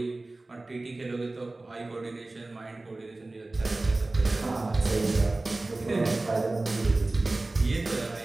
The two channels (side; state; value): left; quieter; 3.0 dB